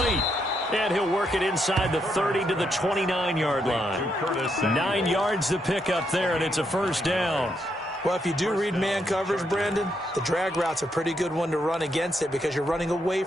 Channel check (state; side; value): normal; both; correlation 0.79